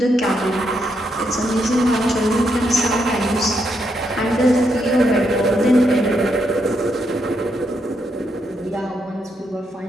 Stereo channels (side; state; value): both; normal; correlation 0.79